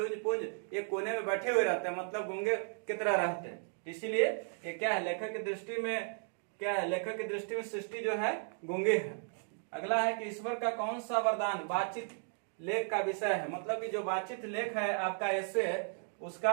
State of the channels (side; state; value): left; silent; 54 dB below the other